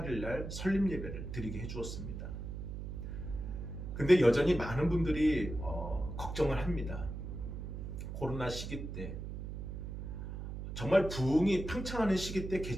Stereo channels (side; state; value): right; noise; hum, 7 dB below the sound